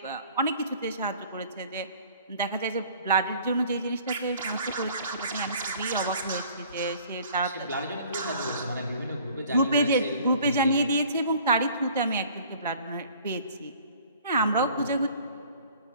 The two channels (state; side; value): inverted; both; correlation -0.52